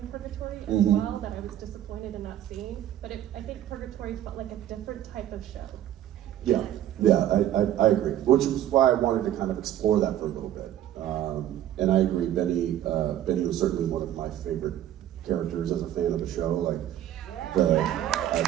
Purgatory as well that I was disappointed in not seeing. But I think Purgatory felt like a different type of show. Yeah, I agree. Which was why I wanted to kind of explore that for a little bit. And I agree, Benny was certainly one of my favorite characters as a fan of the show. Like,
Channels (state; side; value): quieter; left; 12.0 dB